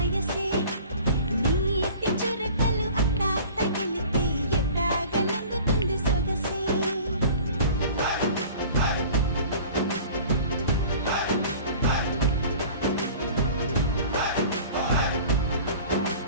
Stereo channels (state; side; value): inverted; both; correlation -0.44